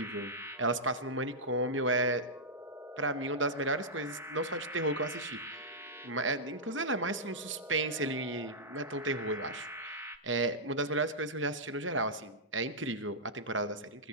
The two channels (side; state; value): both; normal; correlation -0.10